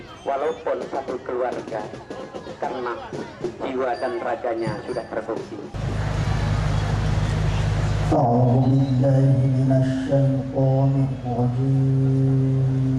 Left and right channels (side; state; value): both; identical; correlation 1.00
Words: walaupun satu keluarga. Karena jiwa dan raganya sudah terbukti. أعوذ بالله من الشيطان الرجيم